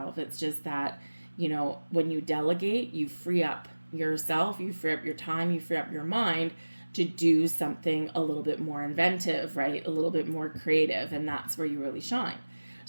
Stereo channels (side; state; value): both; inverted; correlation -1.00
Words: It's just that, when you delegate, you free up yourself, you free up your time, you free up your mind to do something a little bit more inventive, right? A little bit more creative. And that's where you really shine.